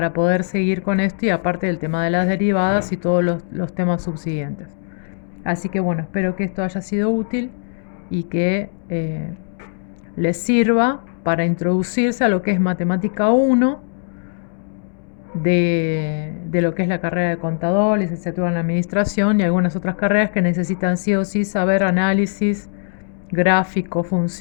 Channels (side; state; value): right; silent; digital silence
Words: poder seguir con esto y aparte del tema de las derivadas y todos los temas subsiguientes. Así que bueno, espero que esto haya sido útil y que les sirva para introducirse a lo que es matemática 1 de lo que es la carrera de contador, licenciatura en administración y algunas otras carreras que necesitan sí o sí saber análisis, gráfico,